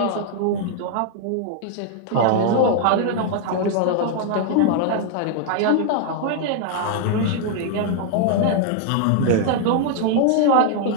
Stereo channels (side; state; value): both; different; correlation 0.00